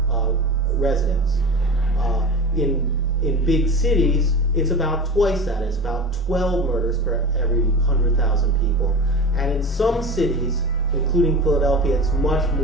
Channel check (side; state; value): both; normal; correlation 0.30